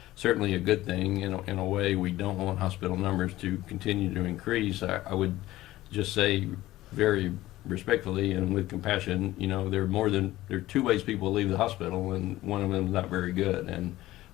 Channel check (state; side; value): quieter; right; 16.2 dB